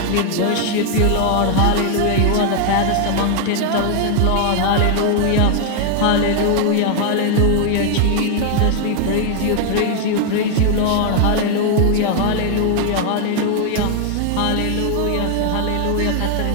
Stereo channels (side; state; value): both; different; correlation 0.00